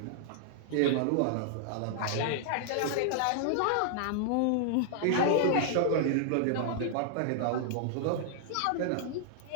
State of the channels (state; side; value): different; both; correlation -0.01